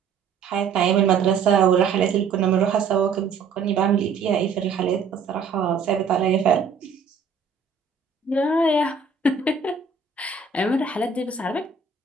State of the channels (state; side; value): quieter; left; 5.5 dB